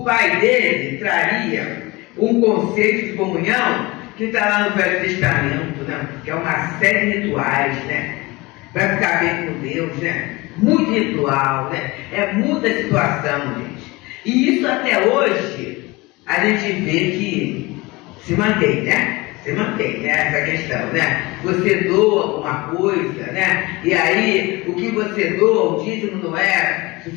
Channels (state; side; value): quieter; right; 22.7 dB